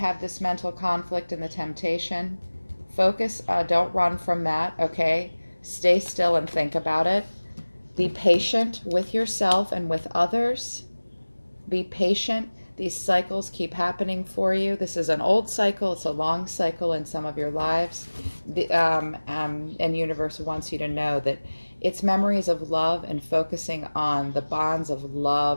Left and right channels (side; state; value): both; inverted; correlation -1.00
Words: this mental conflict and the temptation. Focus, don't run from that, okay? Stay still and think about it. Be patient with yourself and with others. Be patient. These cycles keep happening for you. This is an old cycle. It's a long cycle in some of your lives. And universe wants you to know that it's memories of love and focusing on the bonds of